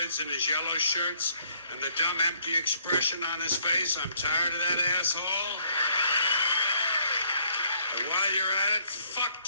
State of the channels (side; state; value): both; inverted; correlation -0.65